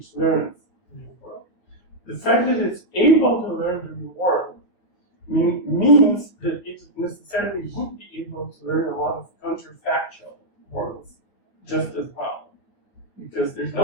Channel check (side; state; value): right; late; 9.2 ms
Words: learns the real world. The fact that it's able to learn the real world means that it necessarily would be able to learn a lot of counterfactual worlds just as well, because there's